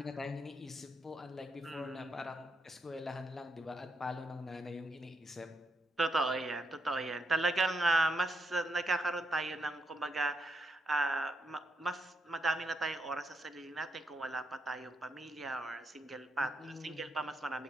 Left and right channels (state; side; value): normal; both; correlation 0.80